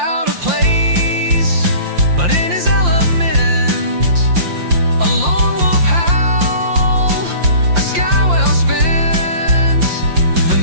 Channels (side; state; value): left; late; 5.7 ms